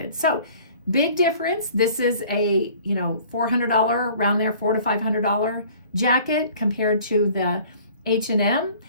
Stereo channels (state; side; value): inverted; both; correlation -0.50